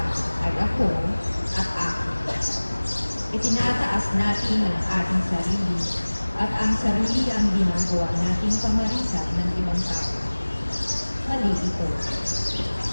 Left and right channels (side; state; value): both; inverted; correlation -1.00